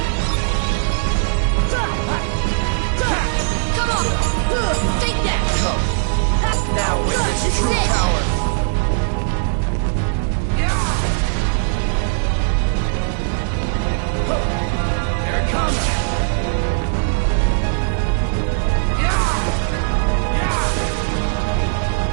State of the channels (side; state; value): left; silent; digital silence